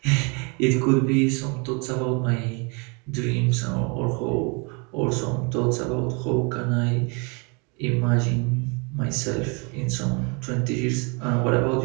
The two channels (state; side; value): quieter; left; 32.2 dB